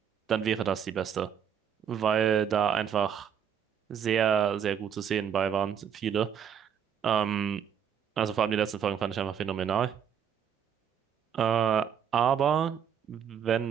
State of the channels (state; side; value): quieter; left; 8.2 dB